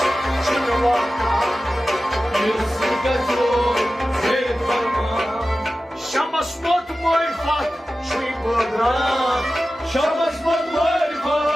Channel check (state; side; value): normal; both; correlation 0.94